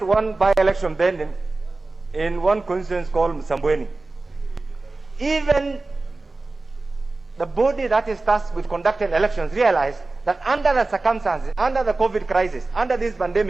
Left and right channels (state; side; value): quieter; left; 3.3 dB